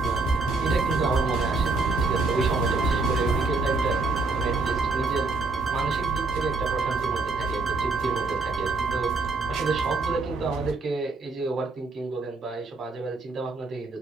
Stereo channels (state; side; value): quieter; left; 3.6 dB